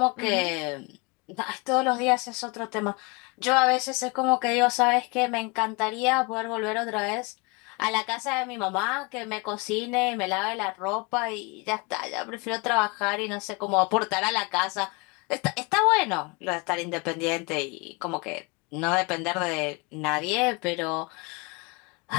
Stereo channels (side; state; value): right; quieter; 28.5 dB